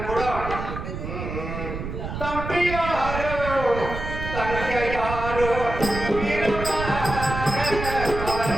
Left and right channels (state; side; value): noise; right; rumble, 6 dB below the sound